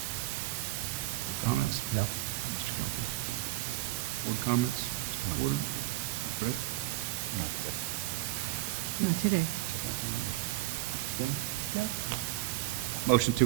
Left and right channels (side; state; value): left; quieter; 17.5 dB